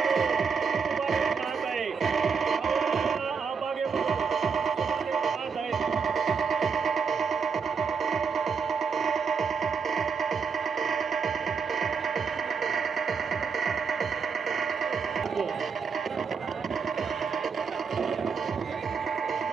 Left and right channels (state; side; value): quieter; left; 5.7 dB